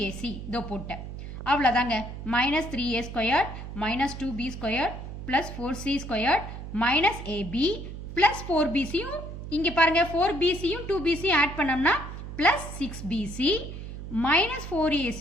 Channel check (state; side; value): noise; right; hum, 9 dB below the sound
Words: தோ போட்டேன். அவ்வளோதாங்க. Minus 3a square minus 2b square plus 4c square minus ab plus 4bcயும் இங்கே பாருங்க 4bcயும் 2bcயும் ஆட் பண்ணோம்னா plus 6bc minus